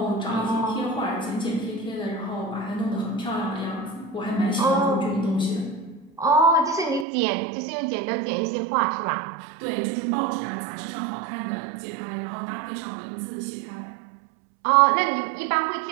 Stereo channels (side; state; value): left; drops out; at 7.1 s